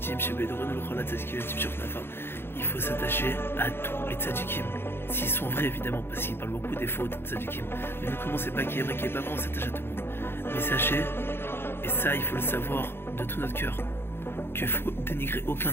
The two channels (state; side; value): late; right; 0.11 ms